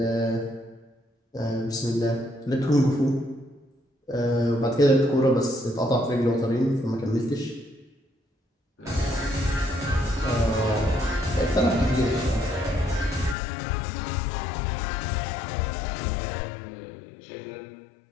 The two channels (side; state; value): right; drops out; at 13.4 s